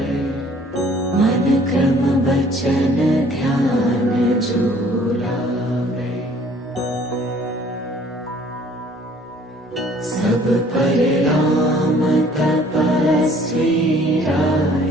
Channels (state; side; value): normal; both; correlation 0.56